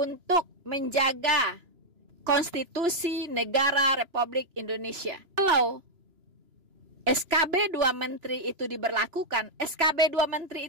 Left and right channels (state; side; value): late; left; 3.0 ms